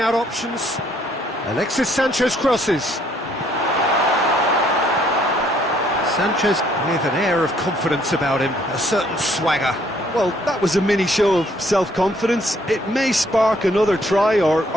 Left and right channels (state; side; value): normal; both; correlation 0.65